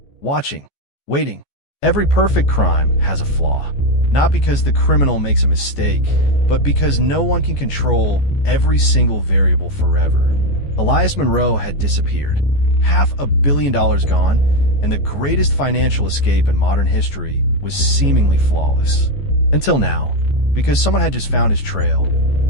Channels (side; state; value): right; late; 14 ms